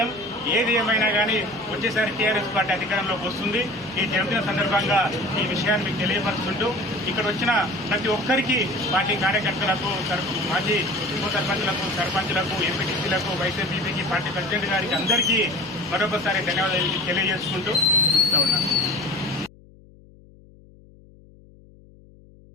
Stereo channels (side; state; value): left; noise; hum, 25 dB below the sound